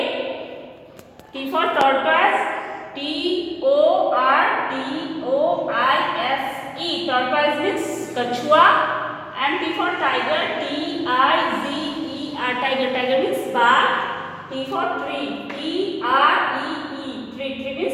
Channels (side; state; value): both; identical; correlation 1.00